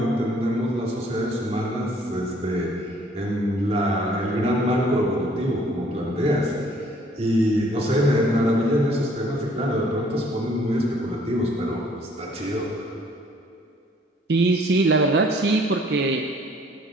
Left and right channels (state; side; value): normal; both; correlation 0.60